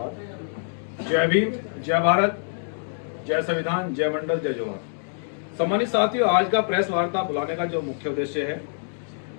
जय भीम, जय भारत, जय संविधान, जय मंडल, जय जोहार। सम्मानित साथियों, आज का प्रेस वार्ता बुलाने का जो मुख्य उद्देश्य है,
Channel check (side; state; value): right; silent; digital silence